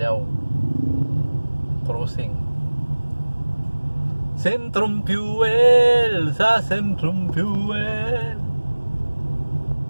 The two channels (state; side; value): inverted; both; correlation -1.00